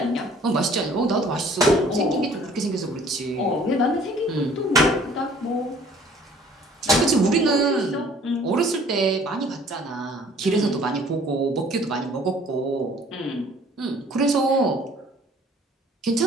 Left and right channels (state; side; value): normal; both; correlation 0.54